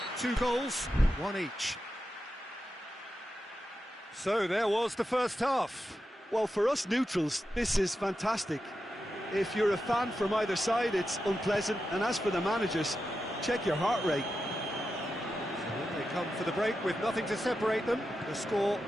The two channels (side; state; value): both; normal; correlation 0.89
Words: 2 goals, 1 each. So there was the first half. Well, for us neutrals, this is fantastic. If you're a fan from either side, it's unpleasant. And as for the managers, check your heart rate. So in they come for the break with nothing to separate them. The score